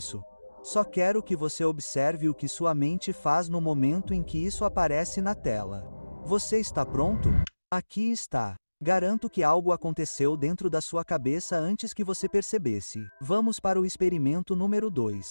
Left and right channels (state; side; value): inverted; both; correlation -1.00